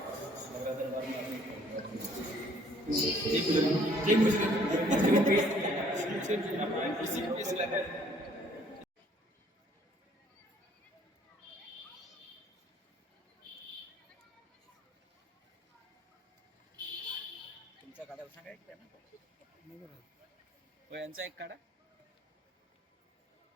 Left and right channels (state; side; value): normal; both; correlation 0.60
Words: तुमचा काढा सांगा एक त्यांना. हो, यांचा एक काढा.